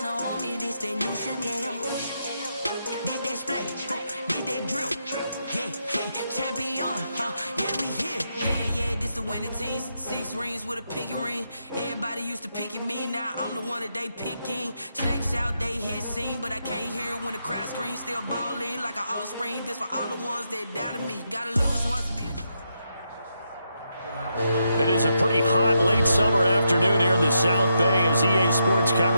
on me, this that new Chanel. Did that splash, did that drill. Yeah, champion, yeah, we here. Yeah, this the winning team. 6 rings with a pinky ring. Everybody used to picking me, now I'm the one that they picking. Snakes out, they hit scene, but I can't hear when the crowd screams. Still balling like an offspring. This for all the ones that doubted me. Gotta lose once to be. It is a pretty hot late summer afternoon here in the South Bay as EA Sports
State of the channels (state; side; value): inverted; both; correlation -0.82